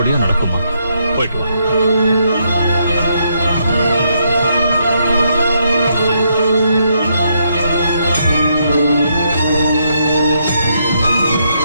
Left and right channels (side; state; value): both; inverted; correlation -0.76